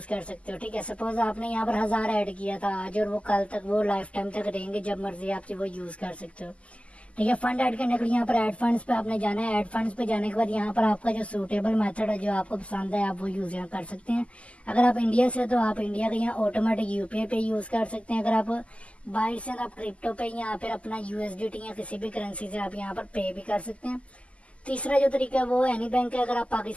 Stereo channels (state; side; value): late; right; 0.061 ms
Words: कर सकते हो। ठीक है, सपोज आपने यहाँ पर 1000 ऐड किया था आज, और वो कल तक वो लाइफ टाइम तक रहेंगे, जब मर्जी आप वो यूज़ कर सकते हो। ठीक है, फंड ऐड करने के लिए यहाँ पर ऐड फंड्स पे आपने जाना है। ऐड फंड्स पे जाने के बाद यहाँ पर आपका जो सूटेबल मेथड है, जो आपको पसंद है, आप वो यूज़ यहाँ कर सकते हैं। अगर आप इंडिया से तो आप इंडिया का यहाँ ऑटोमेटिक यूपीआई पे यूज़ कर सकते हैं। अगर आप बाहर से आप क्रिप्टो पे या फिर अपना यूएसडीटी या किसी भी करेंसी से आप यहाँ पर पे भी कर सकते हैं। तीसरा जो तरीका है वो एनी बैंक है। अगर आप